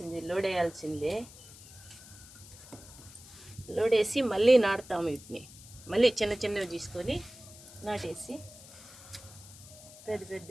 లోడ్ వేయాల్సిందే. లోడ్ వేసి మళ్ళీ నాటుతాము. వీటిని మళ్ళీ చిన్న చిన్నవి తీసుకొని నాటేసి పెద్ద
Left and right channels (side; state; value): left; noise; hiss, 18 dB below the sound